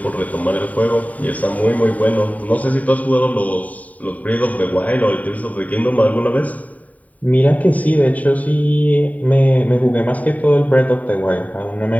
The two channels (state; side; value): late; right; 0.071 ms